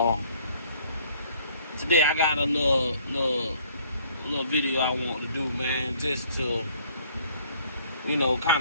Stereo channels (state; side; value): inverted; both; correlation -0.60